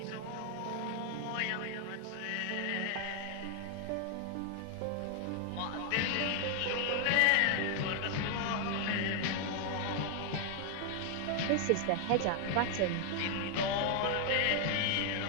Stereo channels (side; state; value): both; different; correlation 0.00